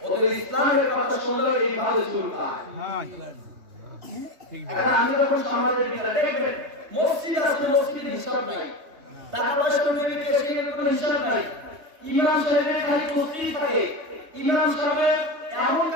ওদের ইসলামের কথা শুনলে এইভাবে চুলকায়। এখন আমি যখন সমাজের ভিতরে দেখবেন মসজিদ আছে, মসজিদের হিসাব নাই, টাকা পয়সা নেবে ক্যাশিয়ারের কোনো হিসাব নাই, ইমাম সাহেবের খালি তসবিহ থাকে, ইমাম সাহেব এমন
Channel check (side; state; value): left; late; 3.2 ms